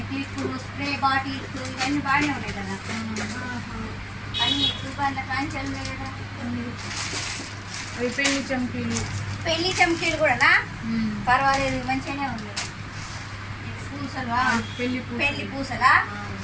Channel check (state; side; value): identical; both; correlation 1.00